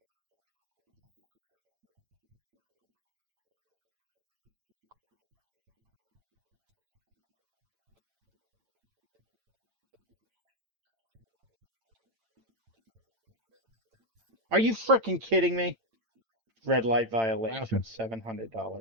Are you freaking kidding me? Red light violation, Happened. $700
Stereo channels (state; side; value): late; left; 8.9 ms